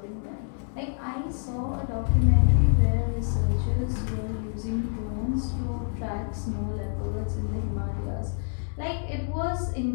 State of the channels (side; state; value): right; silent; digital silence